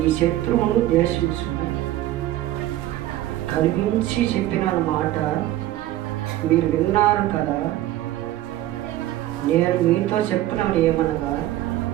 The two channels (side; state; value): left; quieter; 14.5 dB